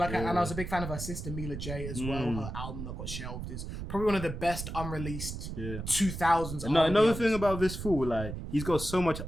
and I was a big fan of her sister Mila J as well. Her album that got shelved is probably one of the best unreleased 2000s. Another thing about this fool, like, he's got so much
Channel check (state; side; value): noise; right; rumble, 7 dB below the sound